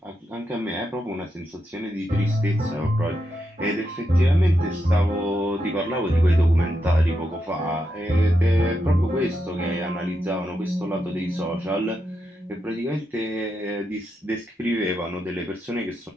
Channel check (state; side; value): normal; both; correlation 0.84